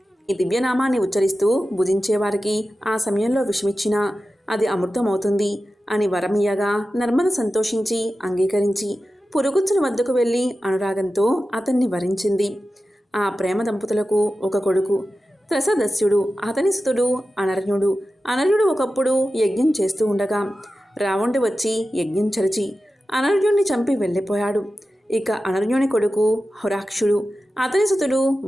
ఈ దివ్యనామాన్ని ఉచ్చరిస్తూ భుజించేవారికి ఆ సమయంలో విషమిచ్చినా అది అమృతమవుతుంది అని వరమియ్యగా నర్మద సంతోషించి అంగీకరించి పురుగుచ్చుని వద్దకు వెళ్ళి అనురాగంతో అతన్ని వరించింది. ఆ ప్రేమ దంపతులకు ఒక కొడుకు త్రసదస్యుడు, అతని సుతుడు అనర్యుడు. అనర్యుడు ఒకప్పుడు యజ్ఞం చేస్తూ ఉండగా రావణుడు వచ్చి యజ్ఞం చరిచి అనర్యుణ్ణి చంపి వెళ్ళిపోయాడు. ఇక అనర్యుని కొడుకు హొరాక్షుడు, అతని సుతుడు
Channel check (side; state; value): both; normal; correlation 0.93